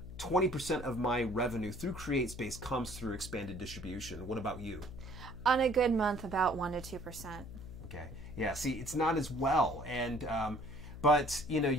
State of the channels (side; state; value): left; noise; hum, 12 dB below the sound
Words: 20% of my revenue through CreateSpace comes through expanded distribution. What about you? On a good month, about 1% to 2%. Okay. Yeah, see, it's not as well. And but